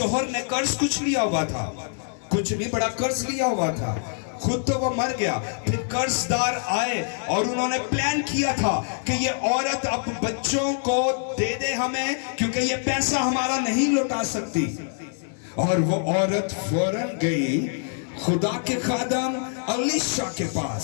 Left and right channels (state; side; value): silent; right; 57 dB below the other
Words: ने कर्ज कुछ लिया हुआ था, कुछ नहीं बड़ा कर्ज लिया हुआ था, खुद तो वो मर गया। फिर कर्जदार आए और उन्होंने प्लान किया था कि ये औरत अब बच्चों को दे दे हमें, क्योंकि ये पैसा हमारा नहीं लौटा सकती। और वो औरत फौरन गई खुदा के खादम अलीशा के